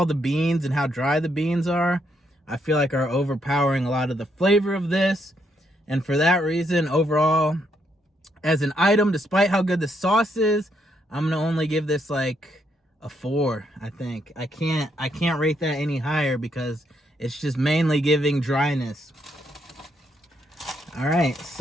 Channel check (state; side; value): normal; both; correlation 0.76